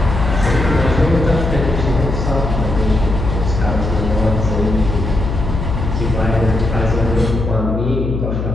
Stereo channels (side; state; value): left; noise; hum, 3 dB below the sound